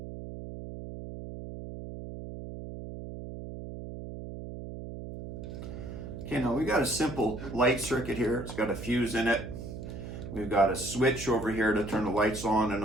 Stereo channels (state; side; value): noise; right; hum, 9 dB below the sound